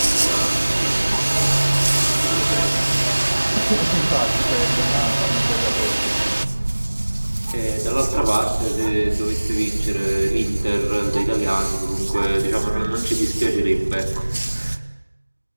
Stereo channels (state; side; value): inverted; both; correlation -1.00